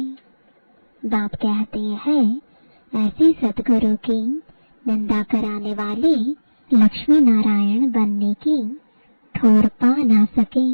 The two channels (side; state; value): both; inverted; correlation -1.00